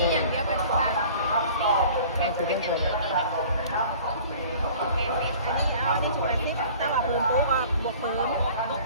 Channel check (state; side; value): inverted; both; correlation -0.47